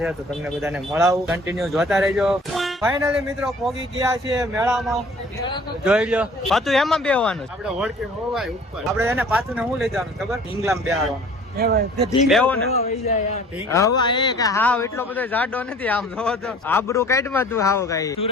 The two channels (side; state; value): both; normal; correlation 0.50